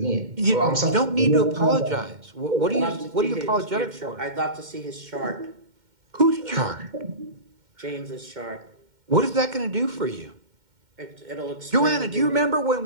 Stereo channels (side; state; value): left; late; 2.1 ms